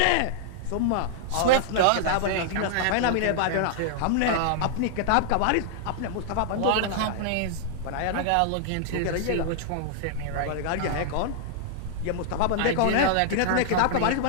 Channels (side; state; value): both; different; correlation -0.01